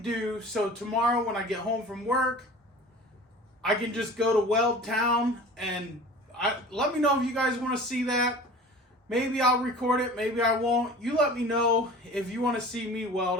So tomorrow when I get home from work, I can just go to Weld Town and let me know if you guys want to see that. Maybe I'll record it, maybe I won't. You let me know if you want to see me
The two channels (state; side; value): normal; both; correlation 0.41